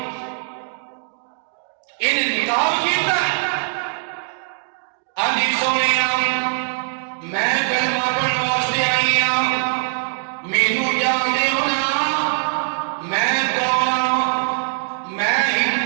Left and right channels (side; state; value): left; silent; digital silence